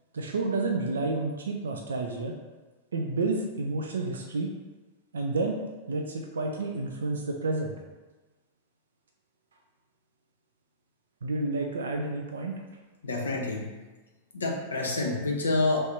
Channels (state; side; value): inverted; both; correlation -0.53